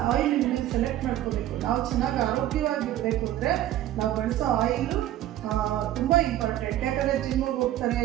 ಆಯಿಲ್ ಸೆಲೆಕ್ಟ್ ಮಾಡ್ಕೋಬೇಕು. ನಾವು ಚೆನ್ನಾಗಿ ಆರೋಗ್ಯವಾಗಿರಬೇಕು ಅಂದರೆ ನಾವು ಬಳಸೋ ಆಯಿಲು ತುಂಬ ಇಂಪಾರ್ಟೆಂಟ್. ಯಾಕಂದರೆ ಜಿಮ್ಮಿಗೆ ಹೋಗ್ತಾರೆ,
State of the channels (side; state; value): left; quieter; 13.3 dB